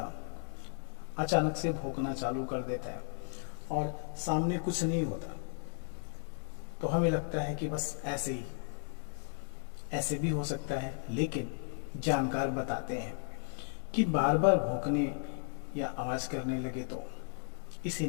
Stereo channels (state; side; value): silent; right; 55 dB below the other